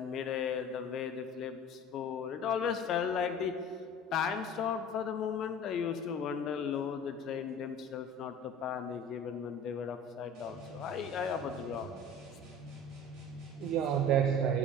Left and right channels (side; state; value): both; normal; correlation 0.41